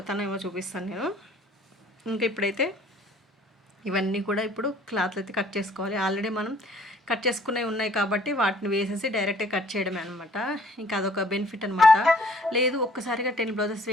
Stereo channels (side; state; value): both; normal; correlation 0.57